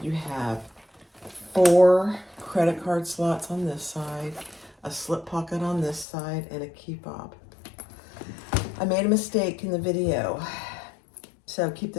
you have 4 credit card slots on this side, a slip pocket on this side, and a key fob. I made a mistake in the video, so keep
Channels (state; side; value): drops out; right; at 6.1 s